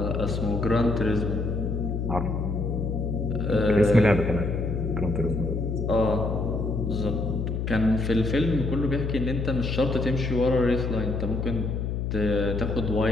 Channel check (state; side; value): noise; left; hum, 1 dB below the sound